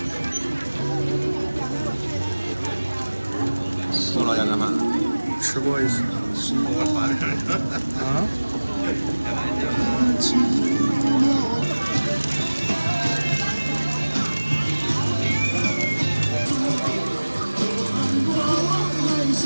宋老家干嘛？吃过一次。啊？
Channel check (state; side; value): inverted; both; correlation -1.00